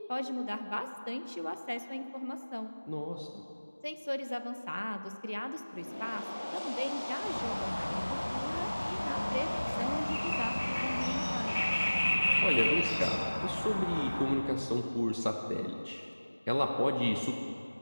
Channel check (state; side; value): inverted; both; correlation -1.00